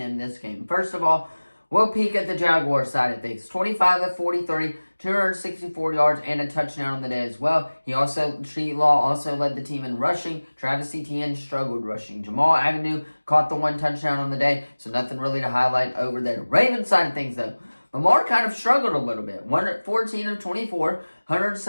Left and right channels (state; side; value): inverted; both; correlation -1.00